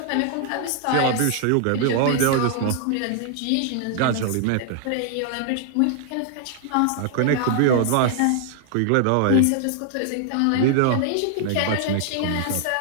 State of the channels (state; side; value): different; both; correlation 0.00